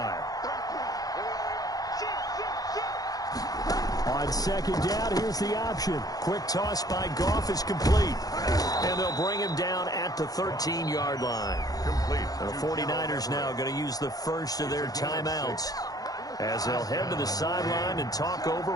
On On second down, here's the option. Quick toss by Goff is complete. And they'll bring him down at the 13-yard line. Complete. The 49ers now going to use the first of their timeouts as they'll head to the sideline and talk over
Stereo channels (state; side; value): late; right; 0.18 ms